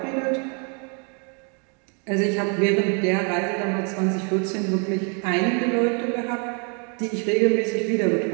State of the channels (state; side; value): quieter; left; 38.1 dB